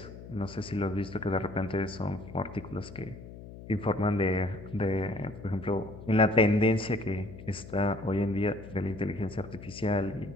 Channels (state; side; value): noise; left; hum, 14 dB below the sound